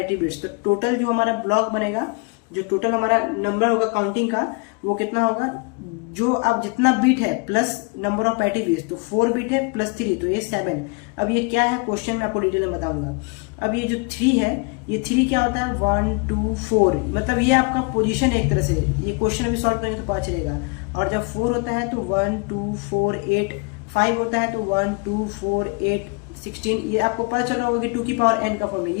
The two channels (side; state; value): right; quieter; 30.2 dB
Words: बिट्स। तो टोटल जो हमारा ब्लॉक बनेगा, जो टोटल हमारा नंबर होगा काउंटिंग का, वो कितना होगा, जो अब जितना बीट है plus number of parity bits, तो 4 बीट है प्लस 3, तो ये 7। अब ये क्या है क्वेश्चन में आपको डिटेल में बताऊंगा। अब ये जो 3 है, ये 3 क्या होता है, 1 2 4, मतलब ये आपका पोजीशन है एक तरह से। ये क्वेश्चन अभी सॉल्व करेंगे तो पता चलेगा। और जब 4 होता है तो 1 2 4 8, 5 होता है तो 1 2 4 8 16। ये आपको पता चल रहा होगा कि 2 की पावर n का फॉर्म है।